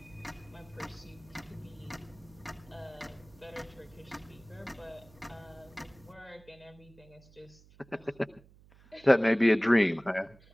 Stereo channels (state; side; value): noise; right; hum, 25 dB below the sound